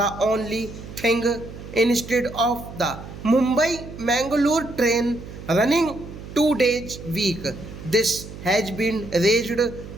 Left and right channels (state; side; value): noise; right; hum, 13 dB below the sound